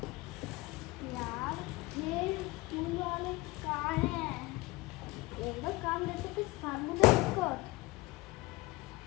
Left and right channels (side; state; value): right; quieter; 21.7 dB